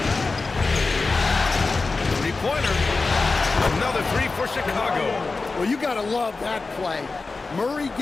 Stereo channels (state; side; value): quieter; right; 3.9 dB